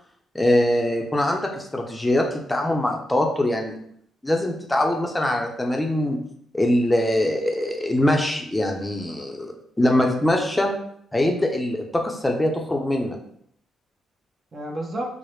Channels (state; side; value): normal; both; correlation 0.89